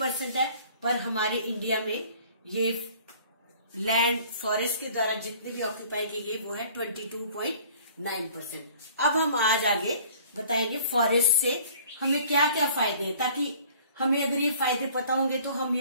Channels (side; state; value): both; inverted; correlation -0.52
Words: है, पर हमारे इंडिया में ये लैंड फॉरेस्ट के द्वारा जितने भी ऑक्यूपाई किए गए वो है 22.9%। अब हम आज आगे बताएंगे फॉरेस्ट से हमें क्या क्या फायदे हैं, ताकि हमें अगर ये फायदे पता होंगे तो हम